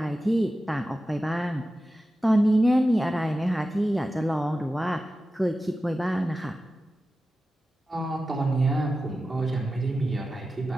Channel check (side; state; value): both; normal; correlation 0.93